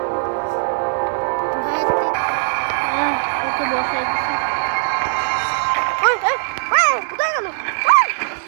ওকে বসাই দিচ্ছি। কোথায় গেল?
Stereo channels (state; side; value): silent; left; digital silence